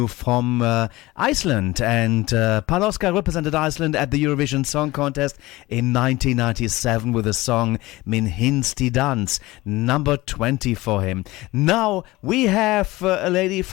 from Iceland. And Panoska represented Iceland at the Eurovision Song Contest in 1997 with the song Min Hinsti Dans, number 20 for him. Now we have a lady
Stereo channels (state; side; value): quieter; right; 19.7 dB